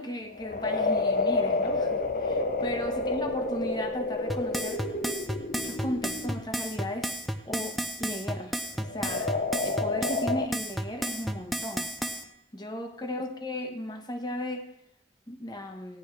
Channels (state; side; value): normal; both; correlation 0.24